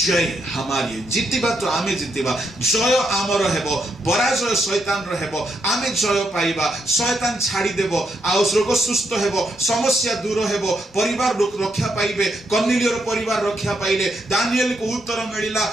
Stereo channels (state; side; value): normal; both; correlation 0.79